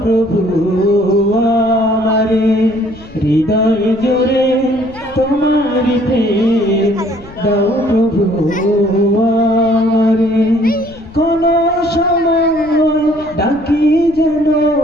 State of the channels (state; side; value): noise; left; rumble, 21 dB below the sound